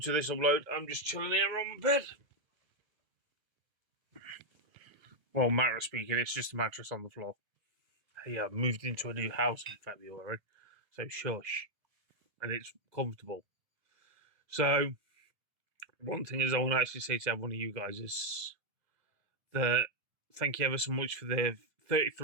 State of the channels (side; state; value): left; late; 2.0 ms